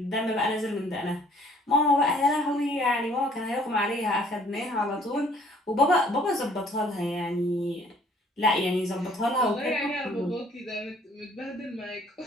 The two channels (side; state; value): both; normal; correlation 0.59